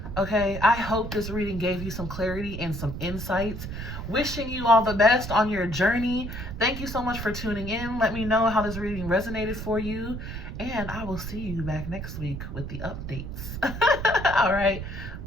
Okay, I hope this reading gave you some clarity and some insights. Wishing you all the best on your journey. Thank you so much for tuning in. Let me know how this reading resonated for you. And I will see you back next week with the updates. All right,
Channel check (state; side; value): noise; right; rumble, 7 dB below the sound